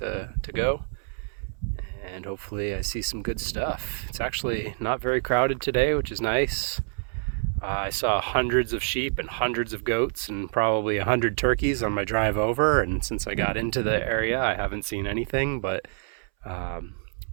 go, and hopefully I see some good stuff. It's actually not very crowded today, which is nice. I saw hundreds of sheep and hundreds of goats and probably 100 turkeys on my drive over, and since I got into the area I haven't seen anything, but I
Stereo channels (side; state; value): left; silent; 60 dB below the other